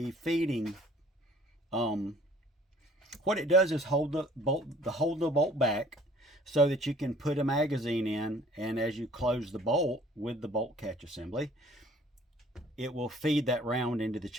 feeding. What it does is hold the bolt back so that you can put a magazine in, and as you close the bolt with the bolt catch assembly, it will feed that round into the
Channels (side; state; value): both; normal; correlation 0.54